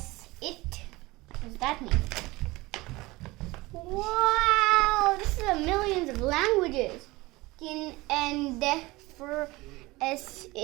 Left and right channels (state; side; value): quieter; left; 21.3 dB